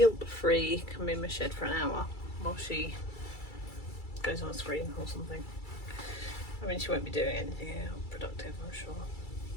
come in my shed for an hour while she goes on a screen or something. I mean, she won't be doing anything productive, I'm sure.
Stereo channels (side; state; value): right; late; 2.3 ms